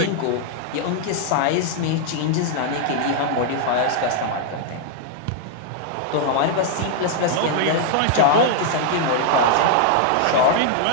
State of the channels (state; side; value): different; both; correlation 0.00